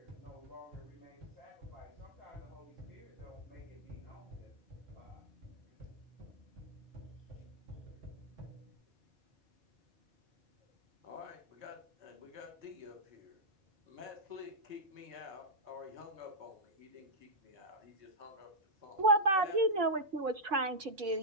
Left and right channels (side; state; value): left; late; 5.0 ms